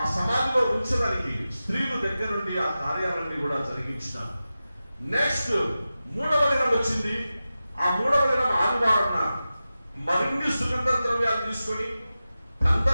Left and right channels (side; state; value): both; inverted; correlation -0.94